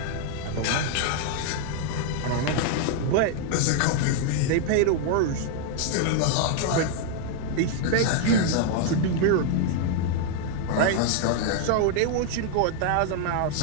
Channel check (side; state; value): both; different; correlation 0.00